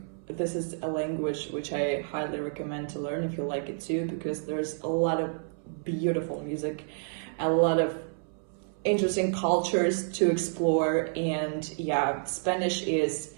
this is a language which I highly recommend to learn if you like it too, because there's a lot of beautiful music, a lot of interesting cultures to explore, and yeah, Spanish is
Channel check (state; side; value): silent; left; 58 dB below the other